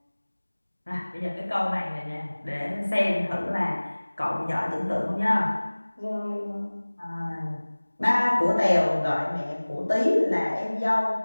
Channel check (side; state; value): both; inverted; correlation -1.00